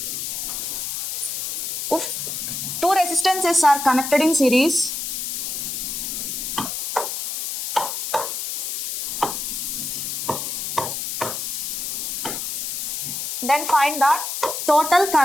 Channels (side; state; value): left; noise; hiss, 3 dB below the sound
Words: if two resistances are connected in series, then find the total